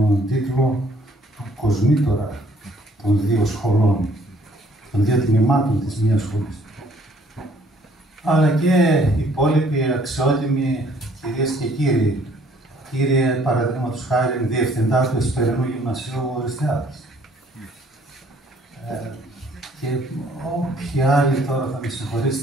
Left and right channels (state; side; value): normal; both; correlation 0.61